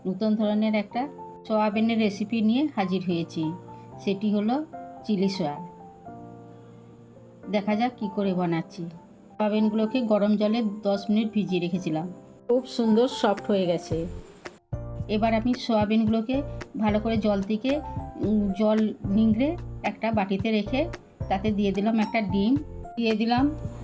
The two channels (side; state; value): both; identical; correlation 1.00